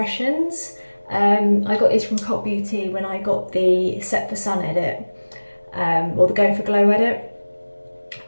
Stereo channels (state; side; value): inverted; both; correlation -1.00